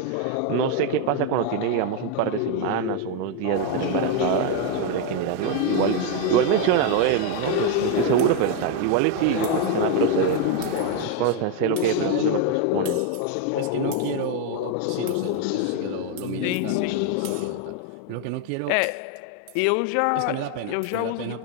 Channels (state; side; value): different; both; correlation 0.01